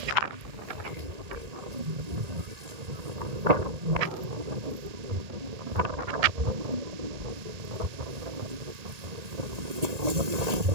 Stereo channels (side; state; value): left; late; 1.4 ms